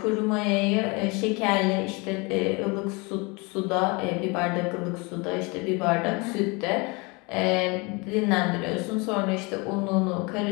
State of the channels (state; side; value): quieter; right; 28.2 dB